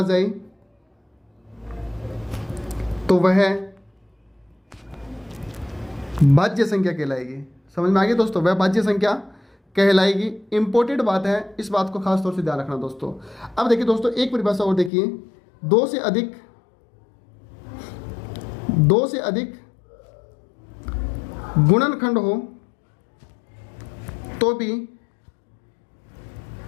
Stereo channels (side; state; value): right; drops out; at 14.9 s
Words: जाए, तो वह भाज्य संख्या कहलाएगी। समझ में आ गया दोस्तों? वह भाज्य संख्या कहलाएगी। इंपॉर्टेंट बात है, इस बात को खास तौर से ध्यान रखना दोस्तों। अब देखिए दोस्तों एक परिभाषा और देखिए, 2 से अधिक गुणनखंड हो तो भी